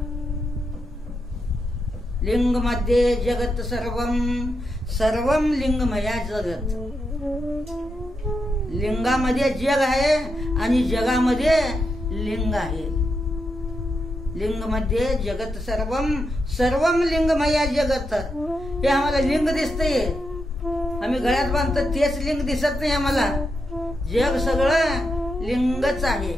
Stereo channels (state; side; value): normal; both; correlation 0.84